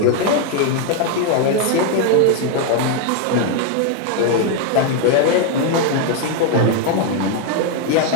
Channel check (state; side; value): different; both; correlation 0.01